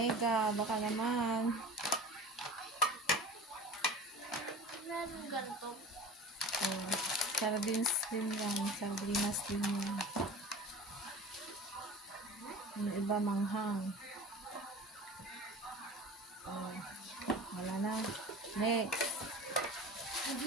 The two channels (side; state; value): both; normal; correlation 0.36